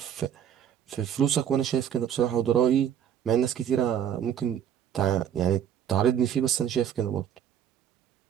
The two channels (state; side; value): quieter; left; 9.2 dB